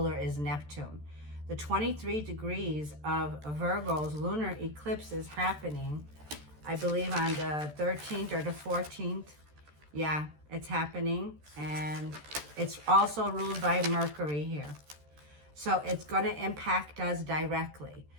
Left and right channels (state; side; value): late; left; 13 ms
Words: is Neptune. The 23 degrees of Virgo's lunar eclipse is happening, I believe, on the 13th or the 14th. Yeah, it's happening. And it's also ruled by Mercury here. So it's going to impact us directly.